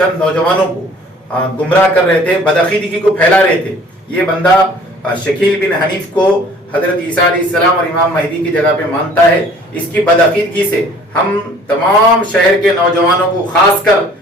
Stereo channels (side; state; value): both; normal; correlation 0.53